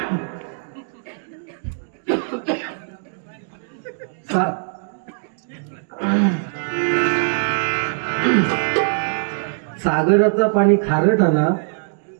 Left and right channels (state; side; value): silent; left; digital silence